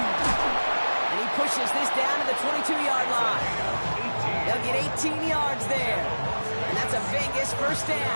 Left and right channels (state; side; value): inverted; both; correlation -1.00